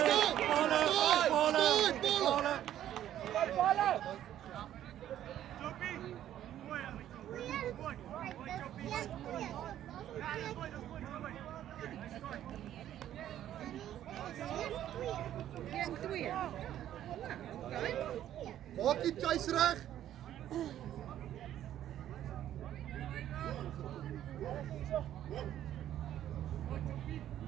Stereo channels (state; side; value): quieter; left; 11.7 dB